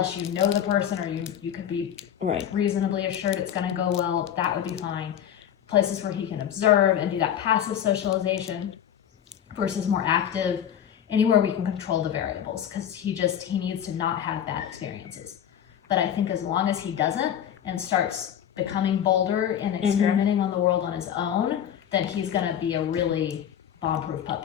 you know the person, or you could be reasonably assured it's going to go well. That would be fine. Places where he can observe and do that passive socialization versus more active, anywhere we can control the variables, because he needs to not have bad experiences. But I think as long as he doesn't and starts becoming bolder and experimenting on the world on his own, then he's going to be a really bomb-proof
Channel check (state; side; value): quieter; right; 9.6 dB